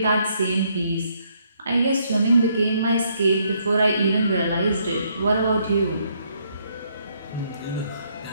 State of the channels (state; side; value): inverted; both; correlation -0.71